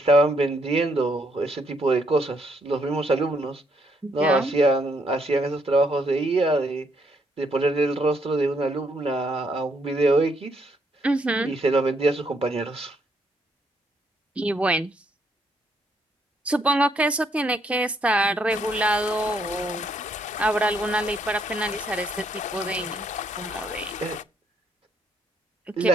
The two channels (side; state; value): both; normal; correlation 0.72